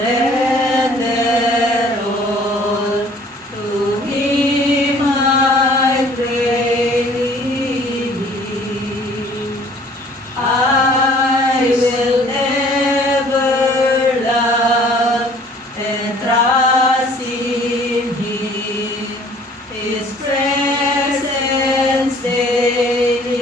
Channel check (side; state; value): both; normal; correlation 0.54